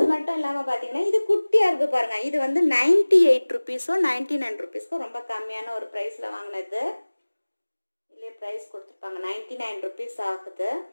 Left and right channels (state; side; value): inverted; both; correlation -1.00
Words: மட்டும் இல்லாமல் பார்த்தீங்கன்னா இது குட்டியாக இருக்குது பாருங்கள். இது வந்து 98 ருபீஸோ 99 ருபீஸ்க்கோ ரொம்ப கம்மியான ஒரு ப்ரைஸில் வாங்கினது. இல்லையே ப்ரைஸ் கொடுத்துருப்பாங்க, 99 ருபீஸ் ஆகுது.